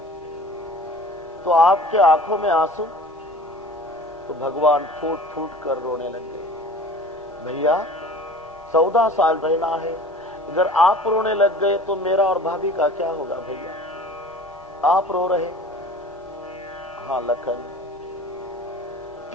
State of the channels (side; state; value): both; normal; correlation 0.43